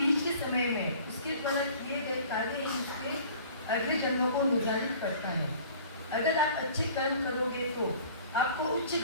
के समय में उसके द्वारा किए गए कार्य ही उसके अगले जन्मों को निर्धारित करता है। अगर आप अच्छे कर्म करोगे तो आपको उच्च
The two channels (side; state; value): both; inverted; correlation -0.48